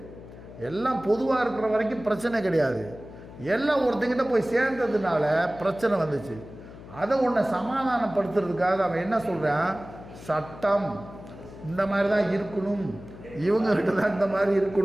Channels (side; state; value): left; noise; hum, 16 dB below the sound